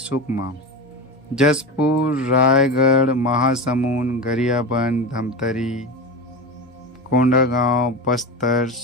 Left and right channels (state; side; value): normal; both; correlation 0.23